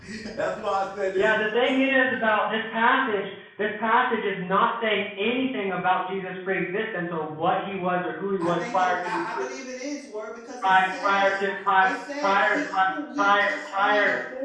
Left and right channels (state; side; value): identical; both; correlation 1.00